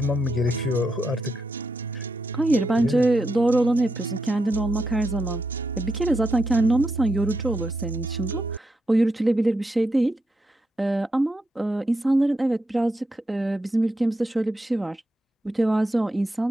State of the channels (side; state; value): both; normal; correlation 0.84